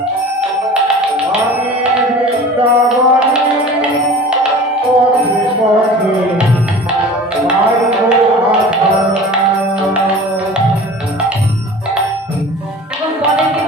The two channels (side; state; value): both; normal; correlation 0.40